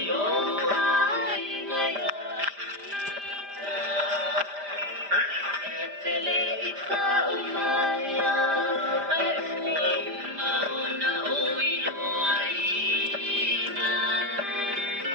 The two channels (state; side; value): late; left; 5.0 ms